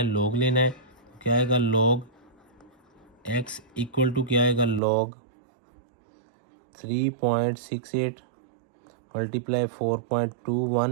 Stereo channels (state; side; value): drops out; left; at 4.8 s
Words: लॉग लेना है। क्या आएगा, लॉग x इक्वल टू क्या आएगा, लॉग 3.68 मल्टीप्लाई